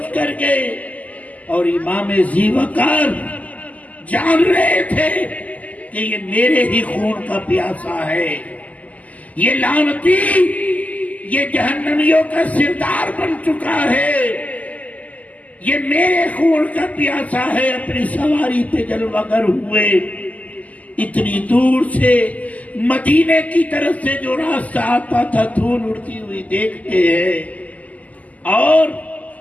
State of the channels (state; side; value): late; right; 0.075 ms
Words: کر گئے، اور امام ذی وقار جان رہے تھے کہ یہ میرے ہی خون کا پیاسا ہے، یہ لعنتی یہ جہنمیوں کا سردار بن چکا ہے، یہ میرے خون کا پیاسا ہے، اپنی سواری پہ جلوہ گر ہوئے، اتنی دور سے مدینے کی طرف سے جو راستہ آتا تھا دھول اڑتی ہوئی دیکھتے ہیں اور